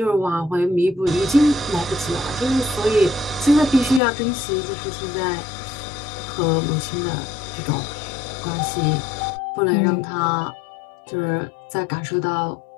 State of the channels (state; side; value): drops out; right; at 4.0 s